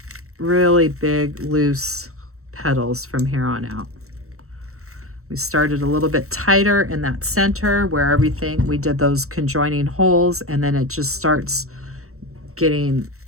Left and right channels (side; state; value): left; late; 0.64 ms